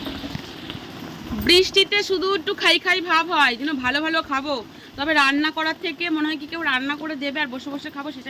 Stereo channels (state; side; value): identical; both; correlation 1.00